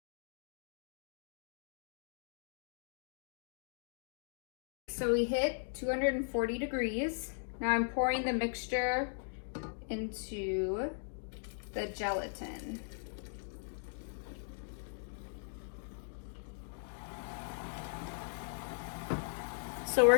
So we hit 240 degrees. Now I'm pouring the mixture into the gelatin. So we're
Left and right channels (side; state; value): right; silent; digital silence